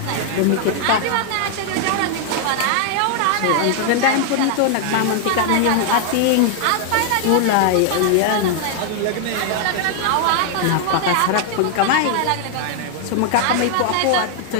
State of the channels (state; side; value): different; both; correlation 0.00